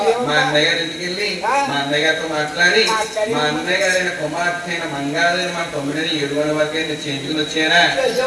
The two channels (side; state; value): both; identical; correlation 1.00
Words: మా అన్నయ్య గారి ఇంటికి వెళ్ళి మా అన్నయ్య గారితో మాట్లాడి మా అన్నయ్య గారైన కుమార్తె అయిన మంగాదేవి మా తొమ్మిదిని 7 వరకు చేయించుకుని వచ్చారా?